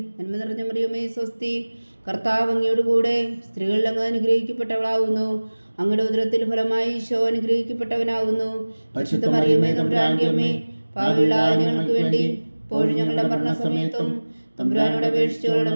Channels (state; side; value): inverted; both; correlation -1.00